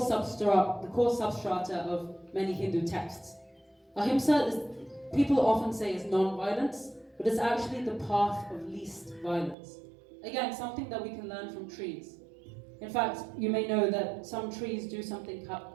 of many Hindu texts. Ahimsa people often say is non-violence, but it's actually the path of least violence. Again, something that we can learn from trees. In fact, you may know that some trees do something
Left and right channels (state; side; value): drops out; left; at 9.6 s